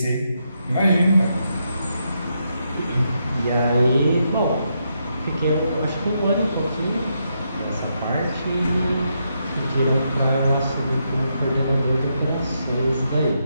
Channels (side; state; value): both; inverted; correlation -0.81